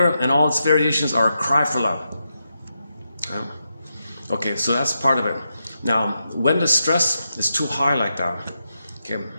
and all its variations are a cry for love. Okay, so that's part of it. Now, when the stress is too high like that, okay,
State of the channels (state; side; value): inverted; both; correlation -0.86